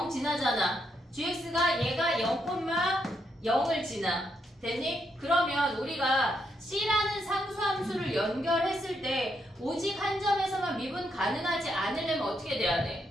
지나잖아. gx가 얘가 0,0을 지나. 됐니? 그러면 우리가 C라는 상수함수를 연결했을 때 오직 한 점에서만 미분 가능하지 않으려면 어떻게 돼야 돼?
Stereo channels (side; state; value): both; normal; correlation 0.79